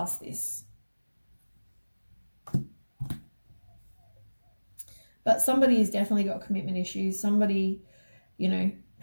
this. But somebody has definitely got commitment issues. Somebody, you know,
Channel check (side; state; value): both; inverted; correlation -1.00